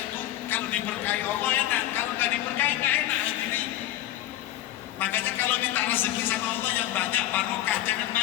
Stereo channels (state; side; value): quieter; right; 13.9 dB